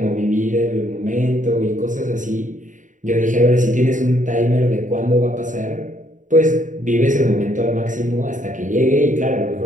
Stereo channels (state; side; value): late; left; 0.37 ms